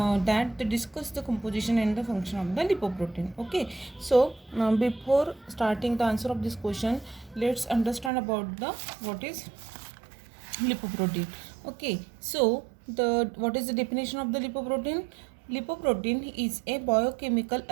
the discuss the composition and the function of the lipoprotein. Okay, so before starting the answer of this question, let's understand about the what is lipoprotein. Okay, so the what is the definition of the lipoprotein? Lipoprotein is a biochemical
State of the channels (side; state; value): left; drops out; at 8.1 s